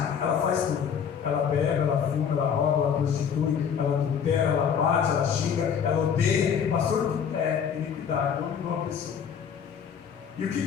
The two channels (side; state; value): right; quieter; 7.5 dB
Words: ela faz tudo. Ela bebe, ela fuma, ela rouba, ela prostitui, ela adultera, ela bate, ela xinga, ela odeia. Pastor, é iniquidade, dominou a pessoa. E o